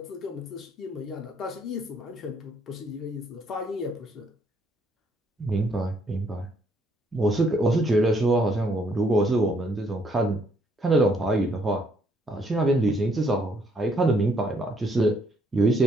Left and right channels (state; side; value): normal; both; correlation 0.69